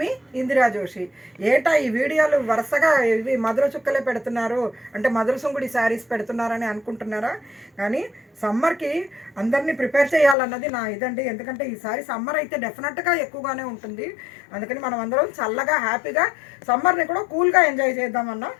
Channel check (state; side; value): drops out; right; at 10.4 s